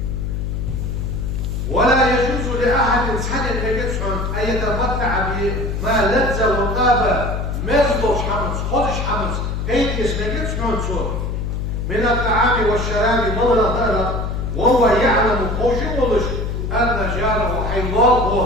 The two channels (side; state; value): left; noise; hum, 2 dB below the sound